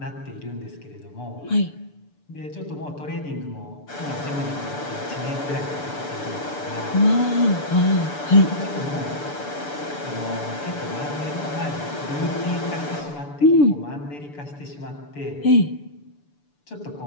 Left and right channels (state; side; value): late; right; 6.9 ms